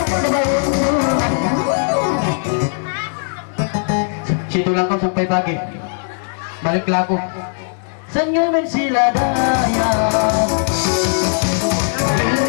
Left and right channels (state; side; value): silent; right; digital silence